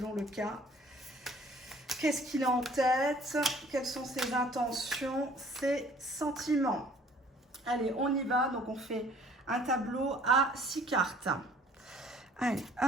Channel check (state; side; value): normal; both; correlation 0.54